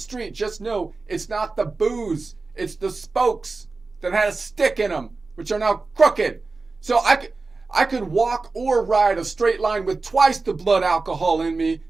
just know it's not the booze. It's the spokes that had a stick in them, which are now crooked. So I could walk or ride a straight line with twice the blood alcohol in me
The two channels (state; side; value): quieter; left; 3.8 dB